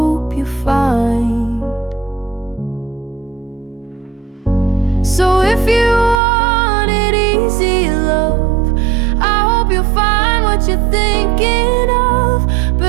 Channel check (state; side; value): drops out; left; at 6.2 s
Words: you find. So if you wanted easy love, I hope you'll find what you're thinking of.